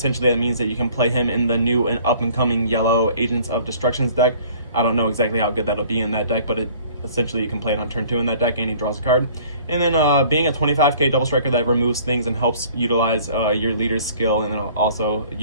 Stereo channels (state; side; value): inverted; both; correlation -0.52